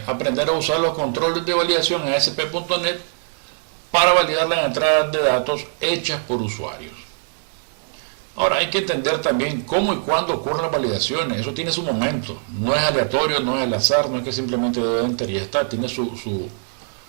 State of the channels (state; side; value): silent; left; digital silence